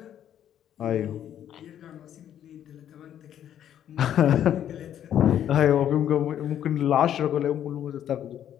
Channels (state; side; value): quieter; right; 10.4 dB